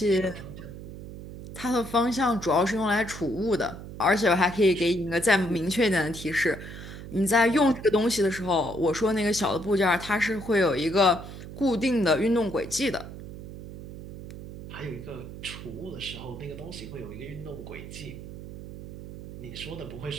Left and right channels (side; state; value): right; noise; hum, 12 dB below the sound